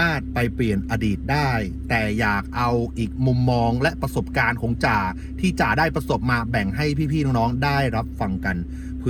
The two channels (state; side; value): identical; both; correlation 1.00